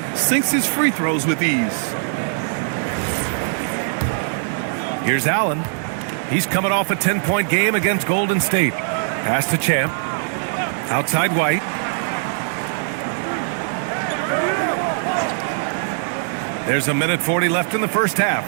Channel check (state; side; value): silent; left; 58 dB below the other